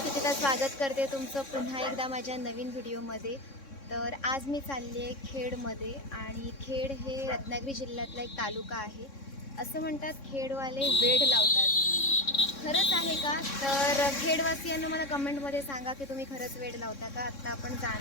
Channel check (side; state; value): right; late; 3.6 ms